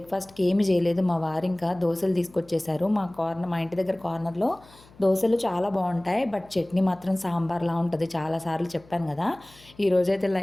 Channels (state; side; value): noise; left; hum, 26 dB below the sound